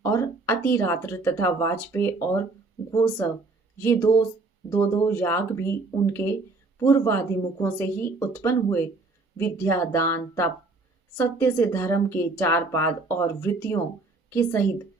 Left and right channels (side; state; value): left; quieter; 3.6 dB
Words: और अतिरात्र तथा वाजपेय और गोसव, ये दो याग भी उनके पूर्वादि मुखों से ही उत्पन्न हुए। विद्या, दान, तप, सत्य से धर्म के चार पाद और वृत्तियों के सहित